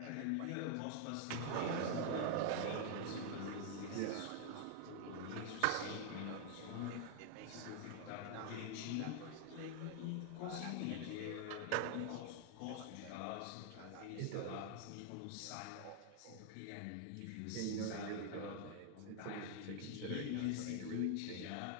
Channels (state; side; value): different; both; correlation 0.00